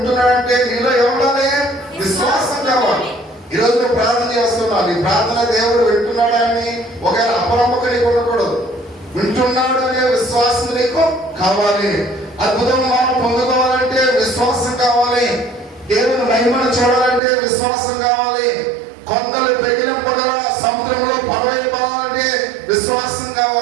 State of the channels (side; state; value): left; drops out; at 17.2 s